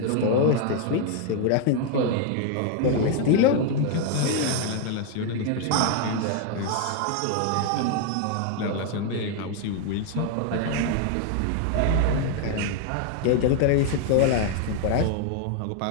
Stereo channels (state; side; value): different; both; correlation 0.00